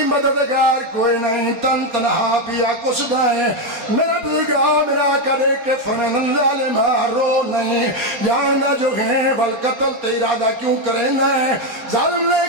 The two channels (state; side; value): late; left; 4.2 ms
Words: مددگار کوئی نہیں تن تنہا پیا کس دائیں میرا بزرگا میرا کرے کہ فرمین ظالمہ رو نہیں جاندہ جو ہیں بل قتل تیرادہ کیوں کرے نہیں ظالم نے